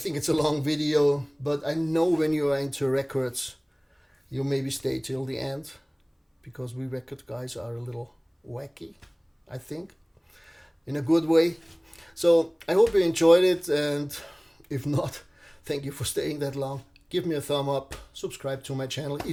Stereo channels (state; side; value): identical; both; correlation 1.00